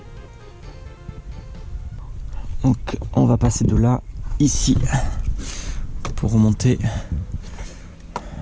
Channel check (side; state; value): both; identical; correlation 1.00